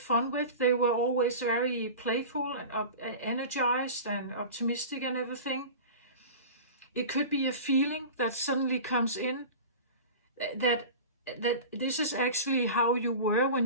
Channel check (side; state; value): both; inverted; correlation -0.34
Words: with. They were always very playful and energized and optimistic and everything. It could be a feeling that suddenly comes in, that this is actually how you were when